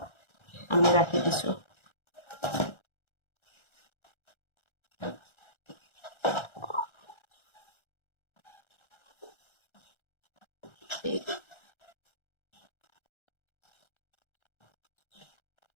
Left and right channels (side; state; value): right; late; 1.3 ms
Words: আমি রাখি দিছো